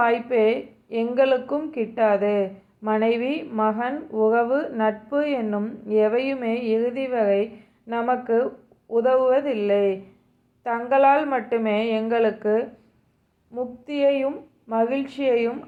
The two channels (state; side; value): identical; both; correlation 1.00